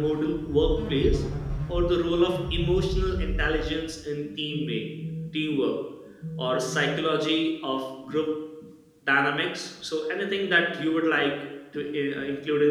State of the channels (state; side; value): identical; both; correlation 1.00